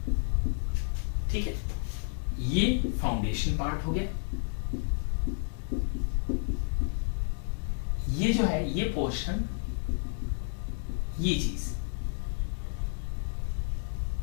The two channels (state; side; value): silent; right; 57 dB below the other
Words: ठीक है। ये फाउंडेशन पार्ट हो गया, ये जो है ये पोर्शन, ये चीज,